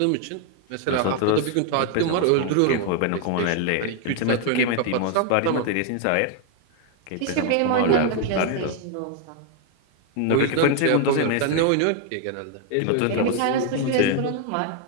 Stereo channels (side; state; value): both; different; correlation 0.00